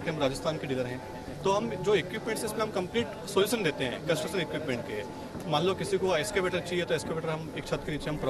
हम राजस्थान के डीलर हैं। तो हम जो इक्विपमेंट्स इसमें हम कंप्लीट सोल्यूशन देते हैं कंस्ट्रक्शन इक्विपमेंट के। मान लो किसी को एक्सकेवेटर चाहिए तो एक्सकेवेटर हम एक छत के नीचे हम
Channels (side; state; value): both; identical; correlation 1.00